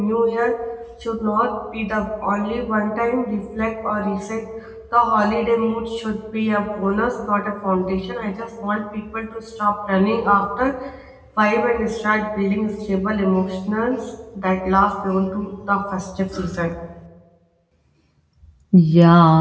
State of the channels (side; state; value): both; identical; correlation 1.00